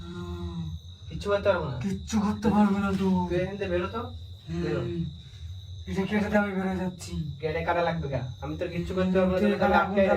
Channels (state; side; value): identical; both; correlation 1.00